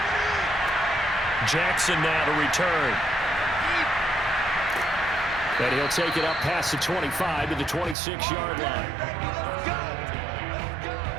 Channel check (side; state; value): left; drops out; at 8.0 s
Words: Jackson now to return. And he'll take it up past the 25 to the 26-yard line.